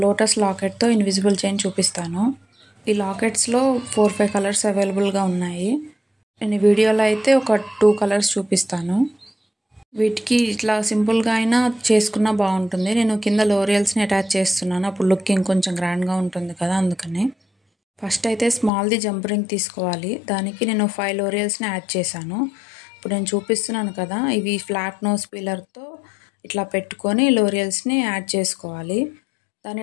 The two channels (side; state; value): right; drops out; at 18.7 s